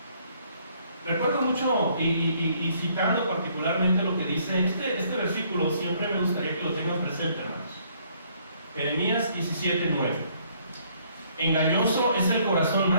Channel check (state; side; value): inverted; both; correlation -0.65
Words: recuerdo mucho y citando particularmente lo que dice este versículo, siempre me gustaría que lo tengan presente, hermanos. Jeremías 17:9. Engañoso es el corazón